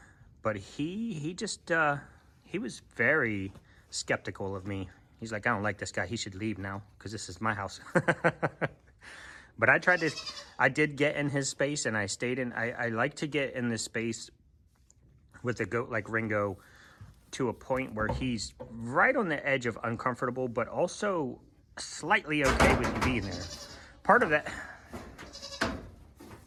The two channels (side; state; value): both; identical; correlation 1.00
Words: But he just, he was very skeptical of me. He's like, I don't like this guy. He should leave now because this is my house. But I did get in his space and I stayed in. I like to get in this space with a goat like Ringo to a point where he's right on the edge of uncomfortable, but also slightly okay with you being there. Part of